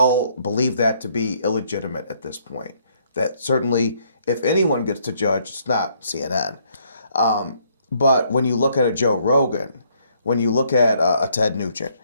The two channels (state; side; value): inverted; both; correlation -0.68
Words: believe that to be illegitimate at this point. That certainly, if anyone gets to judge, it's not CNN. But when you look at a Joe Rogan, when you look at a Ted Nugent,